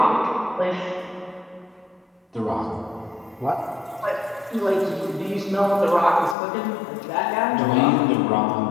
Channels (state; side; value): drops out; right; at 6.4 s